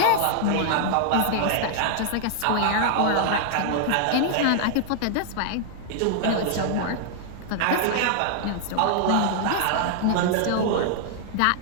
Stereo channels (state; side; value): different; both; correlation -0.01